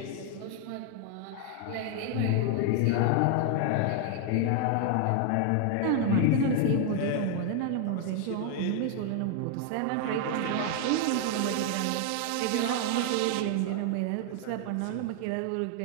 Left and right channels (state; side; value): different; both; correlation 0.00